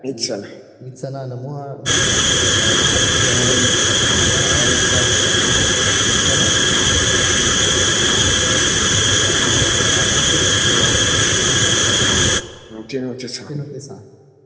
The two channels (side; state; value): both; identical; correlation 1.00